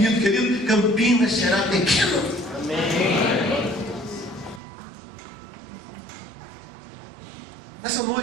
querido, Campinas será pequeno. Amém. Nessa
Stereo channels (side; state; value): left; drops out; at 4.6 s